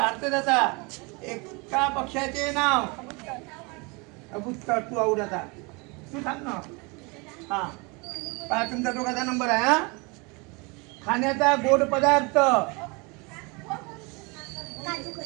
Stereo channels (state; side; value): quieter; left; 28.7 dB